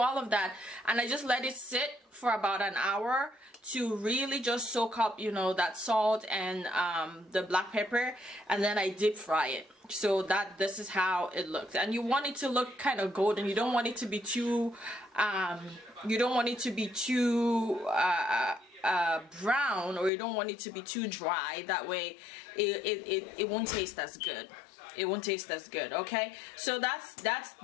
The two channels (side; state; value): right; drops out; at 20.1 s